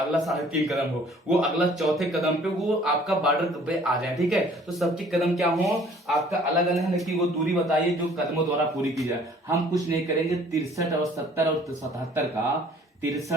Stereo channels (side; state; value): both; normal; correlation 0.55